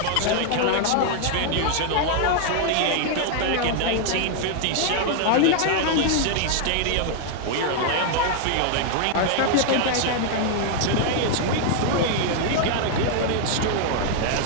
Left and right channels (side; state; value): both; different; correlation 0.00